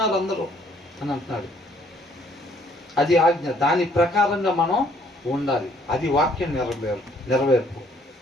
అందరూ అని అంటున్నాడు. అది ఆజ్ఞ. దాని ప్రకారంగా మనం ఉండాలి. అది వాక్యం నెరవేర్పు.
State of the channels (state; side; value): normal; both; correlation 0.63